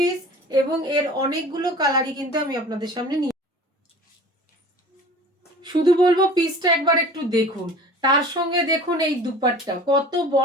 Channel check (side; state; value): both; normal; correlation 0.42